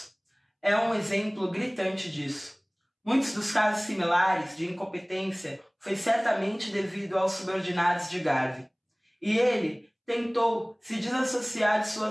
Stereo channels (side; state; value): both; identical; correlation 1.00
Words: é um exemplo gritante disso. Muitos dos casos similares de incompetência foi certamente devido aos subordinados de Garvin, e ele tentou se desassociar de